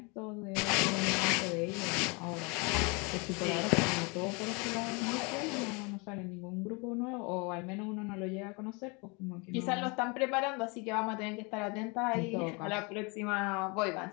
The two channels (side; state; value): right; quieter; 30.2 dB